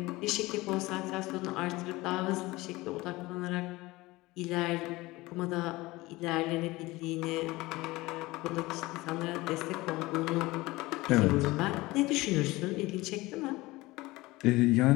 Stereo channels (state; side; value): quieter; right; 20.5 dB